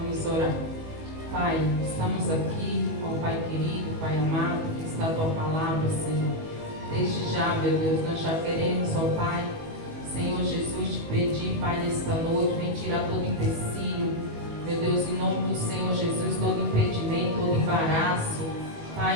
orar. Pai, estamos aqui, ó Pai querido, Pai amado, que está a Tua palavra, Senhor. Desde já, meu Deus, nós já queremos, ó Pai, Senhor Jesus, te pedir, Pai, nesta noite, vem tirar todo empecilho, meu Deus, em nome do Senhor Jesus, todo impedimento, todo embaraço, Pai,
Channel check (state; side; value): late; left; 19 ms